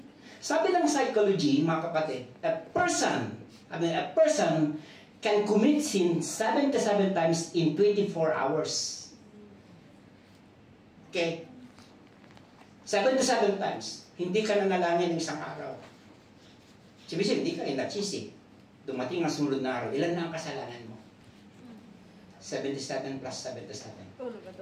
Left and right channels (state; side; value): identical; both; correlation 1.00